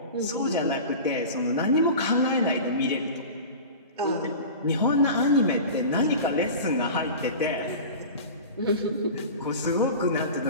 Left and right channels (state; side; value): inverted; both; correlation -0.34